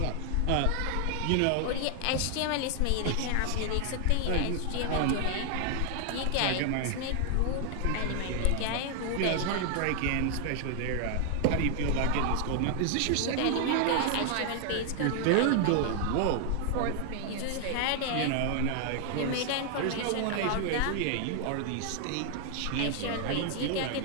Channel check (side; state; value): both; different; correlation 0.00